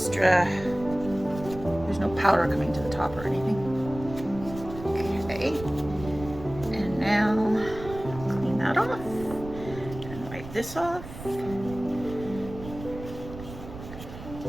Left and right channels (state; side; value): noise; right; rumble, 13 dB below the sound